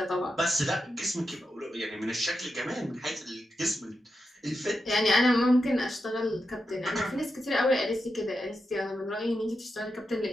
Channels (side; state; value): both; normal; correlation 0.88